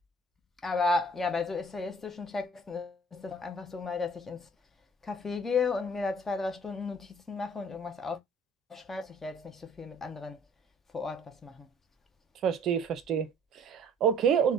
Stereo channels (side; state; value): both; normal; correlation 0.54